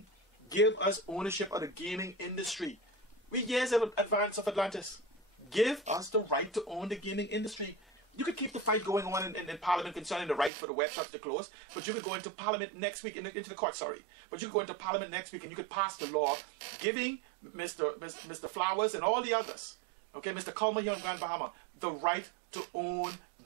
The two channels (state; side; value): drops out; left; at 10.5 s